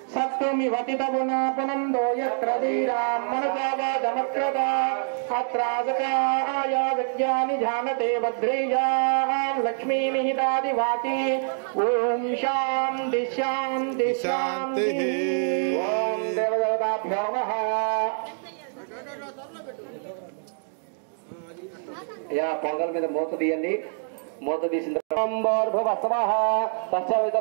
సత్తుమివతితగుణాపునందో యత్ర ధీరాం మనుజావాదమక్రత అత్రాసకాయ విద్యాని జానతే భద్రేయాం లక్ష్మీనిహితాదివాతి ఓం శాంతి శాంతి శాంతి. ఓం దేవదేవతాభ్యో నమః. పొంగల్ మీద మూత తీయండి. మూత తీసిన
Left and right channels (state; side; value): silent; left; digital silence